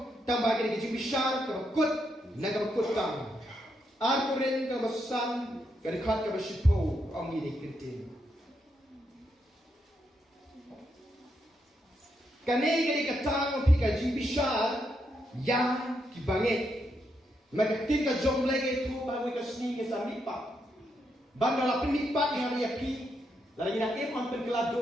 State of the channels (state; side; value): normal; both; correlation 0.80